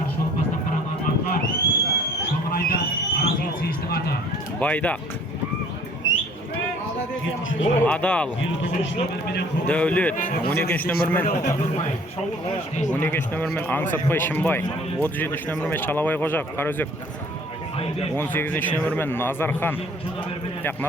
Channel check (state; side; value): normal; both; correlation 0.54